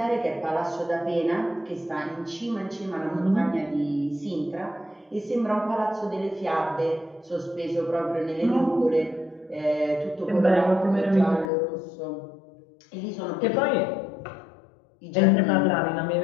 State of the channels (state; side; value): drops out; right; at 11.5 s